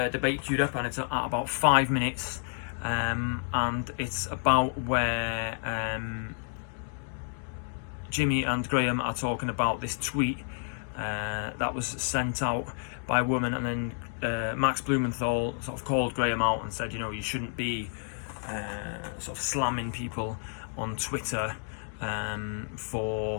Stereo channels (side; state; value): right; silent; digital silence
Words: debate queued up, and it's at about 5 minutes, and it's about where Jimmy and Graham are talking about this tweet that was sent out by a woman, and then Max Blumenthal sort of called Graham out and said, you shouldn't be sort of slamming people on Twitter